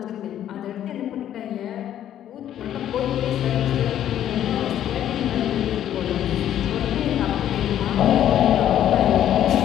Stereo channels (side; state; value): right; quieter; 11.0 dB